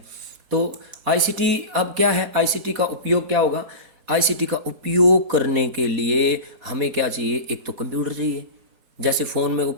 तो आईसीटी अब क्या है, आईसीटी का उपयोग क्या होगा। आईसीटी का उपयोग करने के लिए हमें क्या चाहिए, एक तो कंप्यूटर चाहिए। जैसे फ़ोन में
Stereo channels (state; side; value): late; left; 4.1 ms